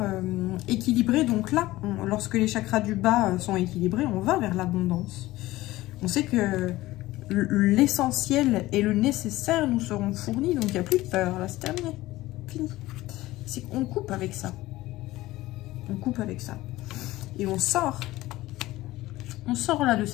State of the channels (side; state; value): right; quieter; 17.5 dB